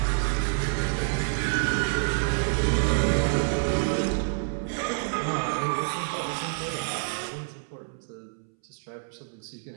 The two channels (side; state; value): left; silent; 60 dB below the other